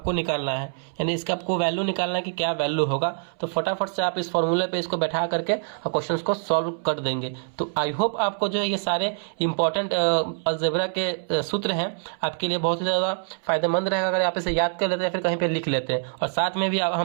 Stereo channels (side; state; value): left; silent; 62 dB below the other